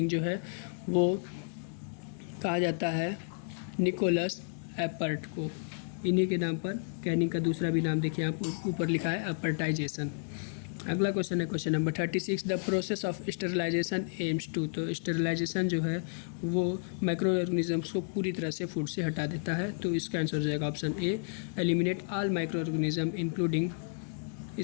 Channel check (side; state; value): right; silent; digital silence